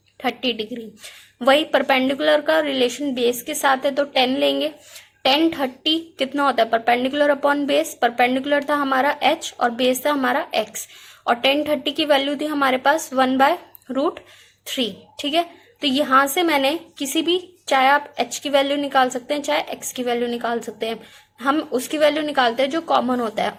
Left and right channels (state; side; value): identical; both; correlation 1.00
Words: 30 डिग्री। वही परपेंडिकुलर का रिलेशन बेस के साथ है तो 10 लेंगे, 10 30 कितना होता है, परपेंडिकुलर अपॉन बेस, परपेंडिकुलर था हमारा H और बेस था हमारा X, और 10 30 की वैल्यू थी हमारे पास 1/√3। ठीक है, तो यहाँ से मैंने किसी भी, चाहे आप H की वैल्यू निकाल सकते हैं, चाहे X की वैल्यू निकाल सकते हैं, हम उसकी वैल्यू निकालते हैं जो कॉमन होता है,